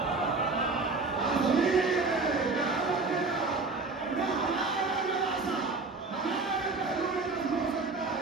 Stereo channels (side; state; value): left; quieter; 3.7 dB